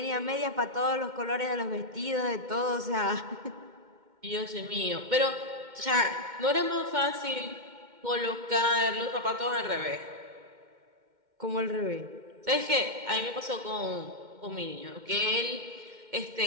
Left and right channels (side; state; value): left; late; 2.1 ms